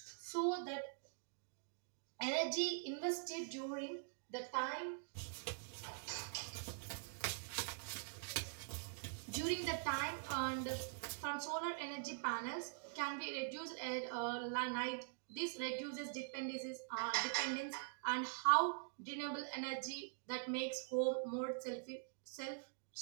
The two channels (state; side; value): silent; left; digital silence